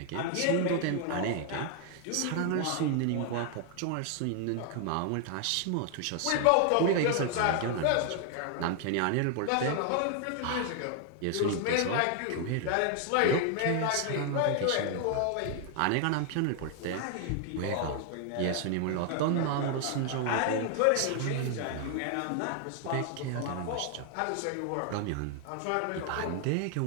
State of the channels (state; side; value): different; both; correlation 0.00